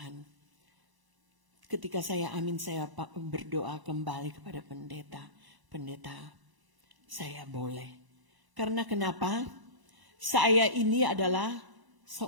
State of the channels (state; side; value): late; left; 1.0 ms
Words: Ketika saya berdoa kembali kepada pendeta, saya boleh. Karena kenapa? Saya ini adalah